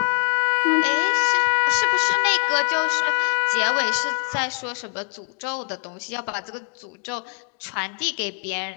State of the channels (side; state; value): right; quieter; 39.1 dB